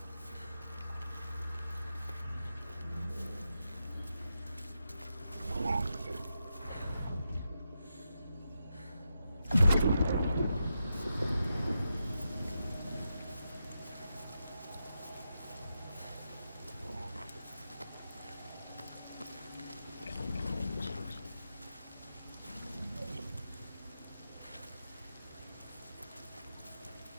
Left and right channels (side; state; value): both; inverted; correlation -0.87